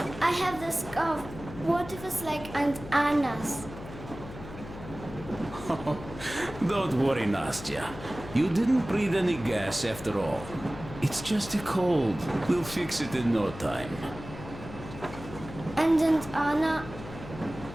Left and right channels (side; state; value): left; noise; hum, 13 dB below the sound